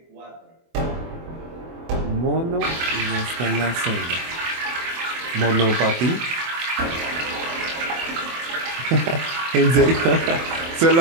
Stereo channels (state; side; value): late; left; 24 ms